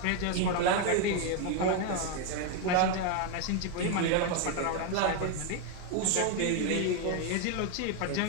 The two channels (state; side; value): different; both; correlation 0.01